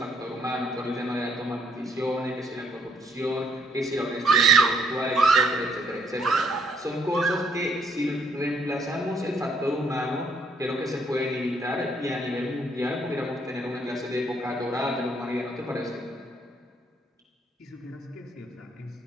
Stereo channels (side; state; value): both; normal; correlation 0.68